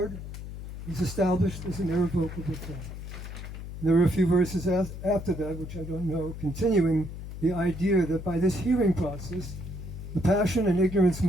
is established as an irrevocable fact. There are a few verses after that, which I don't know, continuing the idea that by this hearing process, the passion and ignorance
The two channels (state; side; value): noise; left; hum, 9 dB below the sound